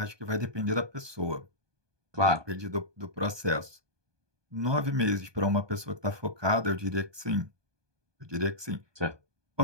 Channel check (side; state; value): left; late; 1.2 ms